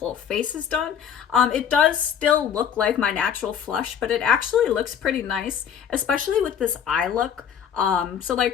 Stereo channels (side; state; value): right; quieter; 8.3 dB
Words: face is done. It does still look like my natural flush, but it actually looks pretty nice, especially with this eye look. So